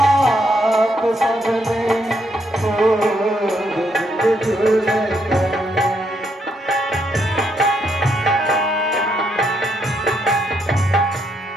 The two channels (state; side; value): normal; both; correlation 0.76